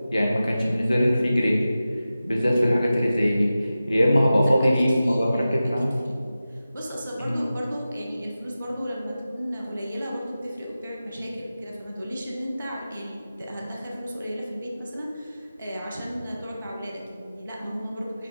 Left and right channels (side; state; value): both; inverted; correlation -0.94